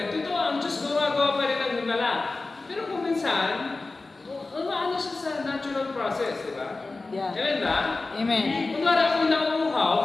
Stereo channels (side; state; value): right; quieter; 3.5 dB